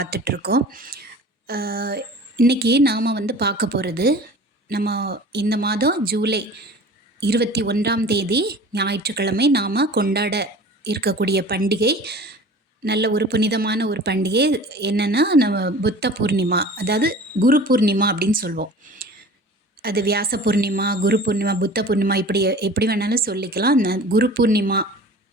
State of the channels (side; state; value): both; normal; correlation 0.42